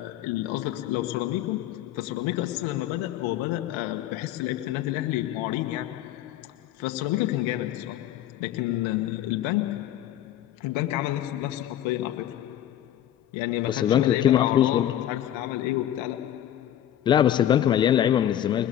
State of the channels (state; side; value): quieter; right; 11.7 dB